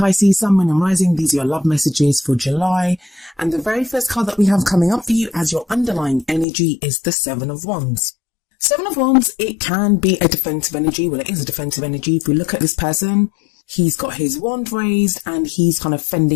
Sun, Moon and Rising. These are your love messages for July. And the very first card that we have coming up for you as your underlying energy is the Seven of Wands. Seven of Wands, it can be a defensive energy. Well, it is a defensive energy. If we look at this person, he's got his wand raised and he's kind of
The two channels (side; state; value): right; drops out; at 6.5 s